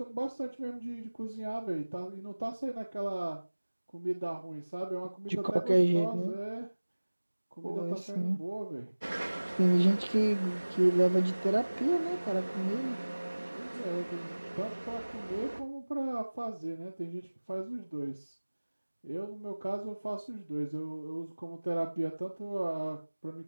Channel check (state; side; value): inverted; both; correlation -1.00